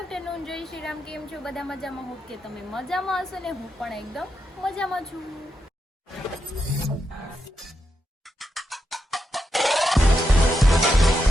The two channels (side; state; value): both; normal; correlation 0.85